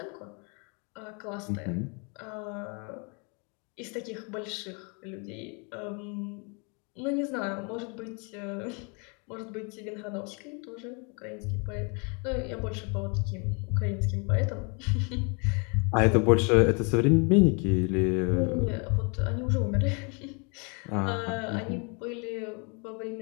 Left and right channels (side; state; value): right; quieter; 34.3 dB